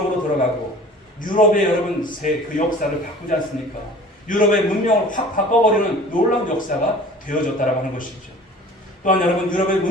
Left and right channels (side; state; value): both; normal; correlation 0.45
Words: 들어가고 유럽의 여러분 그 역사를 바꾸지 않습니까? 유럽의 문명을 확 바꿔버리는 놀라운 역사가 되어졌다라고 하는 것이죠. 또한 여러분 유럽의